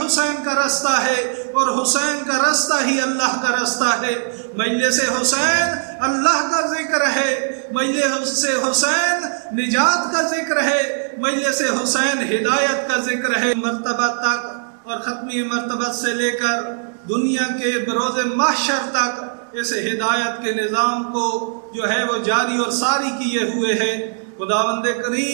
حسین کا راستہ ہے، اور حسین کا راستہ ہی اللہ کا راستہ ہے۔ مجلس حسین اللہ کا ذکر ہے، مجلس حسین نجات کا ذکر ہے، مجلس حسین ہدایت کا ذکر ہے۔ مرتبہ تک اور ختمی مرتبہ سے لے کر دنیا کے بروز محشر تک اس ہدایت کے نظام کو جو ہے وہ جاری اور ساری کیے ہوئے ہے۔ خداوند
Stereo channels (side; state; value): left; silent; digital silence